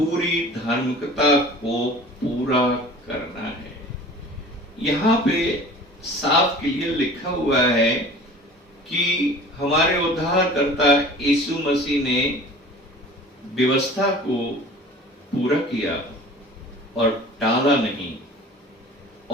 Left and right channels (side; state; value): both; normal; correlation 0.43